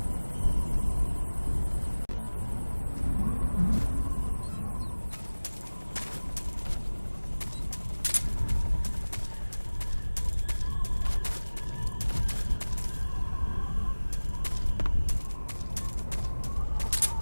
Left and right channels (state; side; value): inverted; both; correlation -1.00